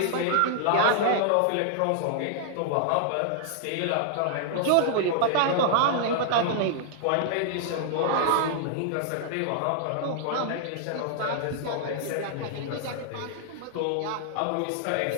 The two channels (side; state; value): both; different; correlation -0.01